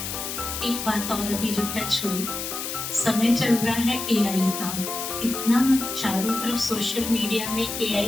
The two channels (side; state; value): left; noise; hiss, 5 dB below the sound